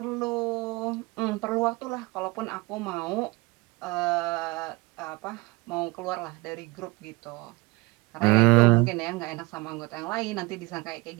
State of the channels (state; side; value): quieter; left; 24.5 dB